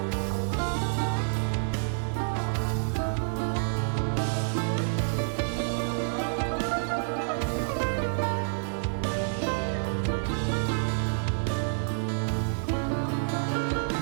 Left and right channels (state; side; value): silent; left; 59 dB below the other